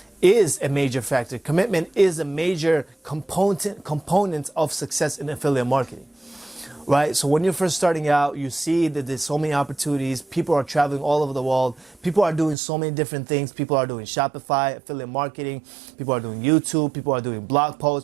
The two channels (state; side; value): drops out; left; at 12.6 s